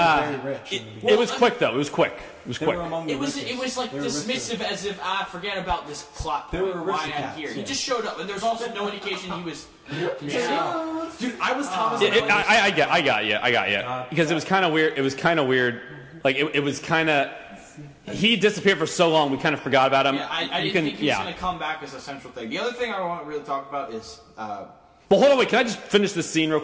very rich. in the beginning. It was quick though. It was quick. They were among the It was richest. like They were dismissive, as if forget about this plot. They were point, why I'm aristocrats, here. He yeah. just showed up, and there's also no indication he was. Dude, I was Thomas. I got you. Because it was kind of weird. It was kind of weird. Like it was kind of. He disappeared for so long, we kind of forgot about him. Yeah, I didn't think he was going to come back as a central thing. The other thing I want to really talk about is. Well, hold on, wait. Can I just finish this scene real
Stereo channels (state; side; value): identical; both; correlation 1.00